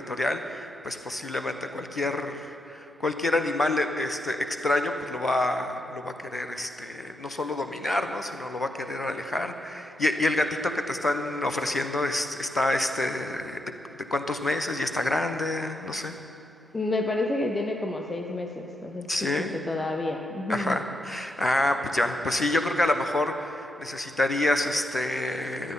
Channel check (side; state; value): both; normal; correlation 0.82